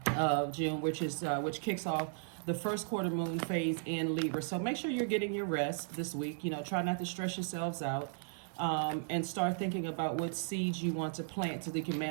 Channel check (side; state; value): left; silent; 54 dB below the other